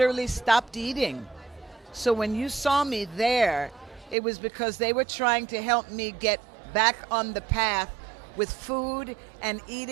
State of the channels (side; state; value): left; drops out; at 4.2 s